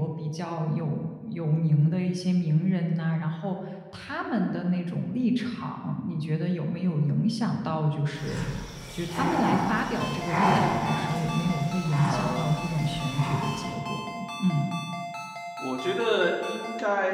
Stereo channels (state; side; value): identical; both; correlation 1.00